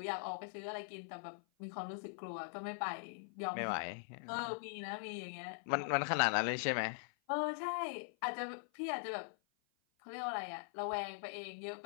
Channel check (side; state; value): right; silent; 50 dB below the other